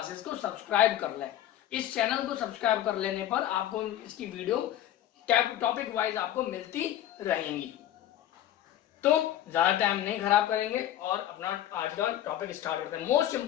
को सब्सक्राइब कर लें। इस चैनल को सब्सक्राइब कर लेने पर आपको इसकी वीडियो टॉपिक वाइज आपको मिलती रहेंगी। तो ज्यादा टाइम नहीं खराब करेंगे और अपना आज का टॉपिक स्टार्ट करते हैं। मोस्ट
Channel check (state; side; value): quieter; right; 12.3 dB